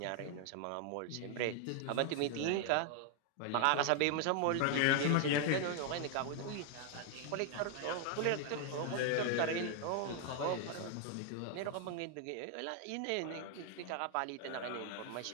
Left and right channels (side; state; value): both; different; correlation 0.00